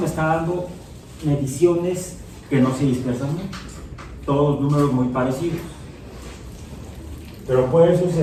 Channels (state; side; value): identical; both; correlation 1.00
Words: está dando mediciones que no se dispersan mucho, todos números muy parecidos, pero puede